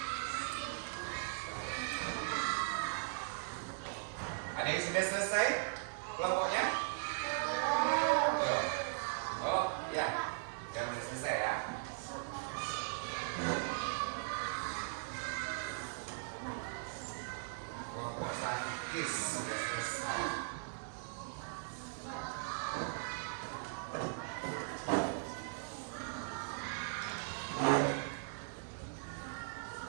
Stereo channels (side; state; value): left; silent; digital silence